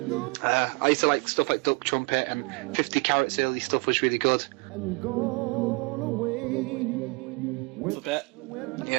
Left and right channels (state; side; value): quieter; left; 29.8 dB